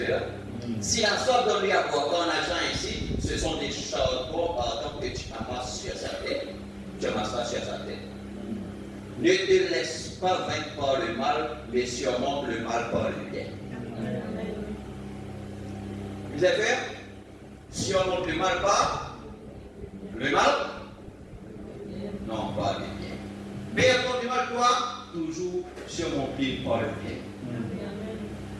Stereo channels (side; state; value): both; identical; correlation 1.00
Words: là? Si la sorte donne lui à boire ton argent ici, ce sont des charbons pardon, que tu amasses sur sa tête. Tu amasses sur sa tête. Ne te laisse pas vaincre par le mal, mais surmonte le mal par le bien. Vous avez fait? Surmonte le mal par le mal? Non, pas le bien. Mais contre le mal, toi, toujours surmonter par le bien.